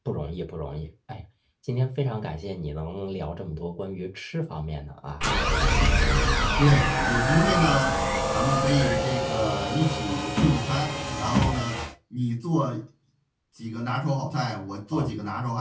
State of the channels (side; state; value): both; identical; correlation 1.00